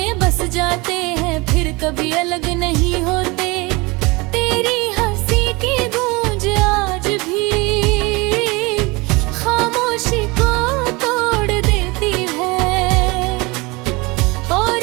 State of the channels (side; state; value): left; quieter; 25.1 dB